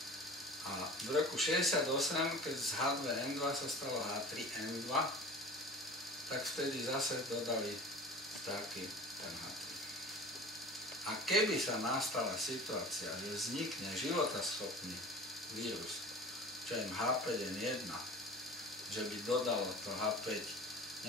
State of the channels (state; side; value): normal; both; correlation 0.39